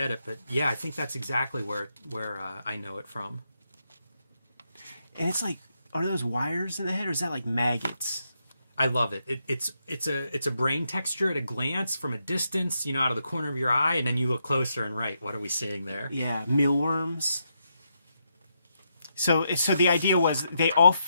it, but yeah, I think that's exactly where I know it from. And it's like, are those wires in the head, or is that like maggots? I love it. It's a brain texture at a glance from a distance, you know, out of the corner of your eye, and then you look closer and right, what are we seeing there? Yeah, mealworms. So the idea was they all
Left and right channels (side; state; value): both; inverted; correlation -0.81